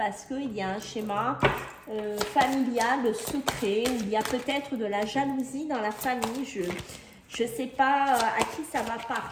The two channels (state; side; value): identical; both; correlation 1.00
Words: qu'il y a un schéma familial, secret, où il y a peut-être de la jalousie dans la famille, je ne sais pas à qui ça va